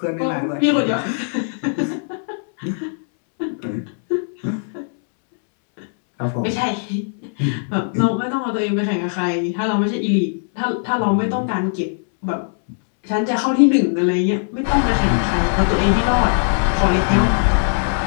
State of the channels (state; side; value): silent; right; 66 dB below the other